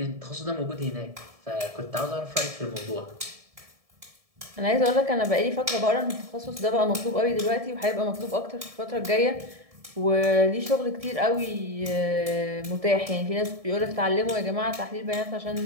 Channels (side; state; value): left; late; 1.7 ms